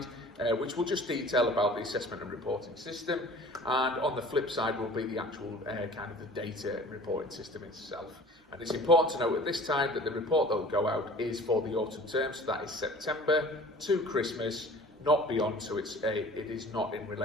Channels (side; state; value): both; normal; correlation 0.45